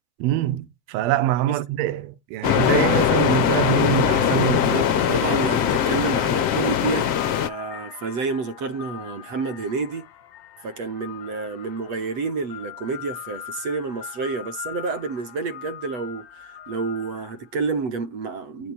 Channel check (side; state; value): left; late; 7.6 ms